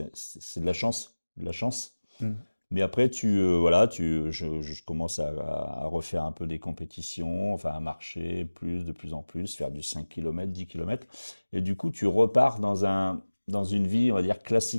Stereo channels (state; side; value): inverted; both; correlation -1.00